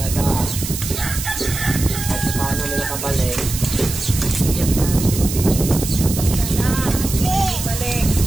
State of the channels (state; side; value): noise; right; hiss, 7 dB below the sound